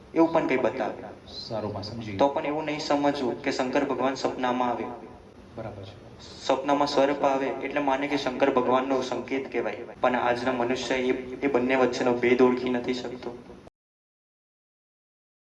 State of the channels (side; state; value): both; identical; correlation 1.00